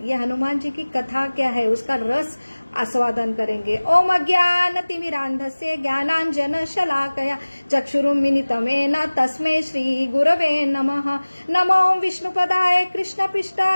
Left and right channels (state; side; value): inverted; both; correlation -1.00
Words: ये हनुमान जी की कथा क्या है, उसका रस आस्वादन करेंगे। ओम अज्ञानतिमिरान्धस्य ज्ञानांजन शलाकया चक्षुरुन्मिलितमेन तस्मै श्री गुरवे नमः। नमो विष्णुपदाय